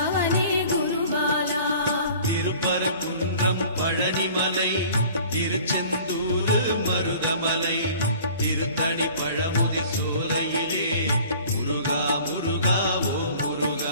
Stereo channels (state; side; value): inverted; both; correlation -0.48